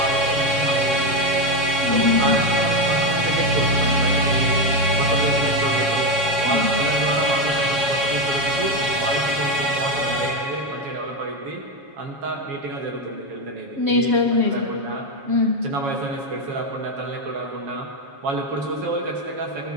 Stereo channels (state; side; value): late; left; 7.2 ms